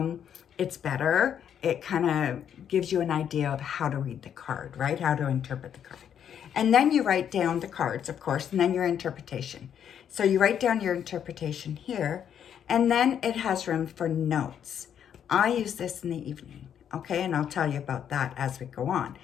It's better. It kind of gives you an idea of how to read the card, right? How to interpret the card. And then you write down the cards, of course, and then your interpretation. So you write down your interpretation here, and then it has room for notes. I use this in the evening, okay? And I'll tell you about that as we go on,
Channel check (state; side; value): quieter; right; 8.9 dB